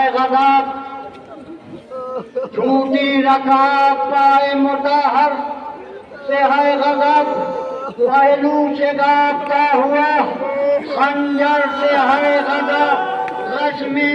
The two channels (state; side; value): identical; both; correlation 1.00